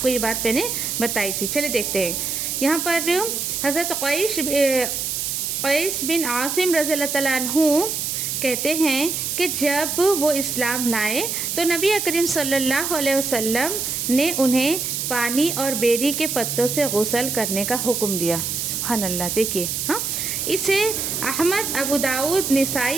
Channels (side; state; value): right; noise; hiss, 2 dB below the sound